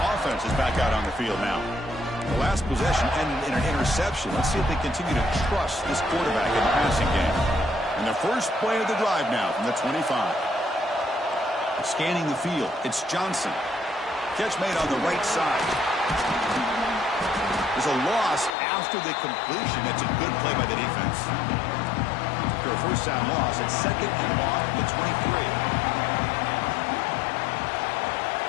offense is back out on the field now. The last possession ended in an interception. Let's see if they continue to trust this quarterback in the passing game. And the first play of the drive now from the 25. Scanning the field, it's Johnson. Catch made on the right side. There's a loss after the completion. That's a good play by the defense. A first down loss. It's second and long at the 23.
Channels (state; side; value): drops out; right; at 18.6 s